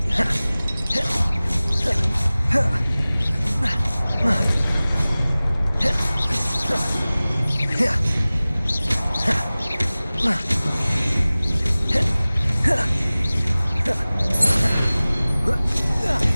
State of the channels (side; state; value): both; inverted; correlation -0.98